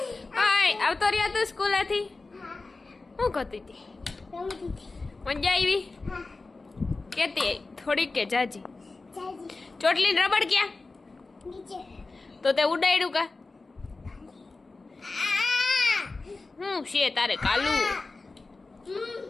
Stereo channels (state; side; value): quieter; right; 3.6 dB